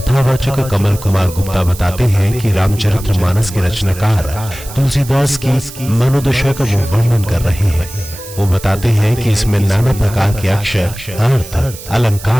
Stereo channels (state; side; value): noise; right; hiss, 15 dB below the sound